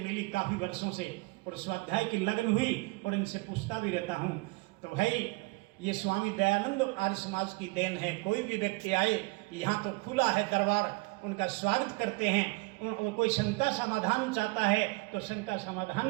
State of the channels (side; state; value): left; quieter; 25.9 dB